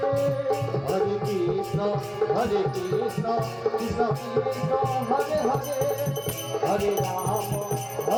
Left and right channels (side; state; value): both; identical; correlation 1.00